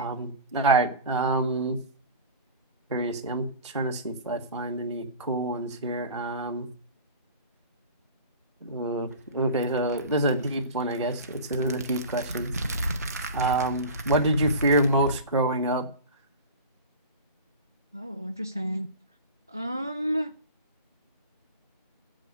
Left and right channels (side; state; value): both; inverted; correlation -0.34